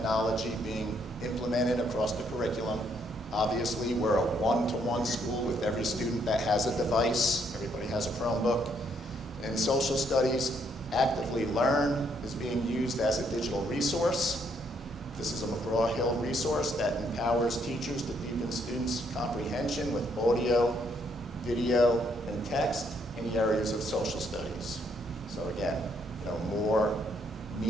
being implemented across the curriculum. Obviously, we're a one-to-one school with every student that has a device. Everybody has a Chromebook. In social studies, Actively Learn is being used as a digital resource. This is a McGraw-Hill resource that empowers teachers to deepen students' comprehension with audio, video, and text in the areas of social studies. So again, more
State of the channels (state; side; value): normal; both; correlation 0.71